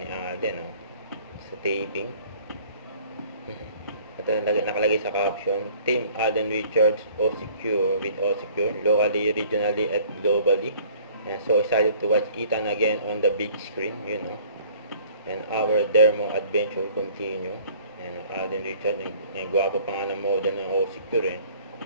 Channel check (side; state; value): both; inverted; correlation -0.53